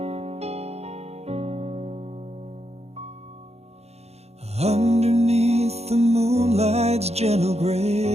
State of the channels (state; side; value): late; left; 0.31 ms